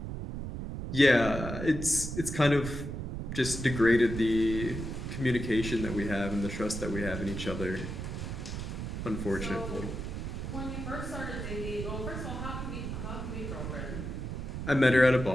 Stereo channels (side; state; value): right; noise; rumble, 5 dB below the sound